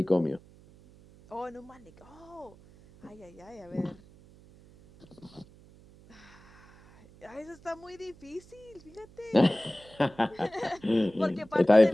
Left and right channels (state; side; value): noise; right; hum, 24 dB below the sound